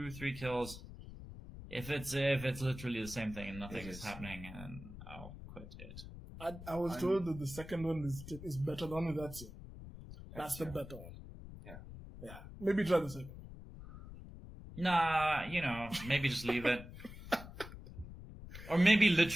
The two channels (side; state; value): left; noise; rumble, 13 dB below the sound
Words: kills. If it's literally the same thing and nothing is happening, and I'll quit it. I was told that the second one is better than Ezio. That's the better one. Yeah. Yeah. Maybe try the second. Nah, maybe just leave it. Or maybe